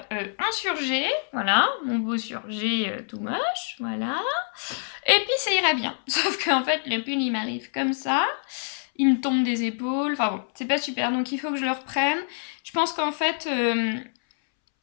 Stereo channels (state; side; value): silent; right; 61 dB below the other